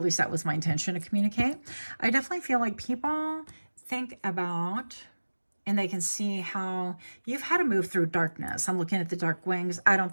least that was my intention to communicate, I definitely feel like people think about and they can see how you've had to move through darkness. I'm looking at the dark wings. I don't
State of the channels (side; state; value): both; inverted; correlation -1.00